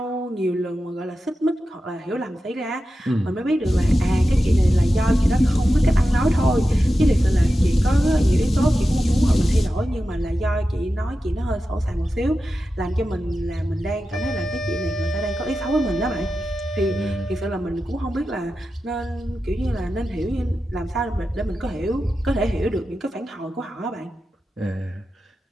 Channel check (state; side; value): normal; both; correlation 0.92